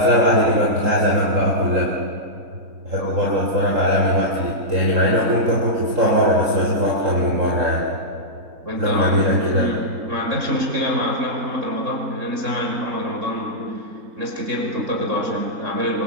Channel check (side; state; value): left; late; 3.7 ms